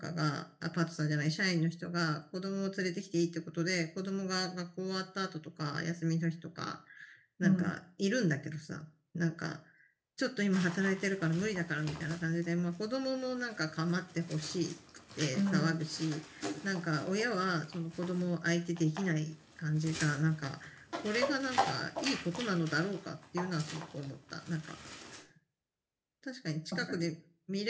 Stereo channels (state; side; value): identical; both; correlation 1.00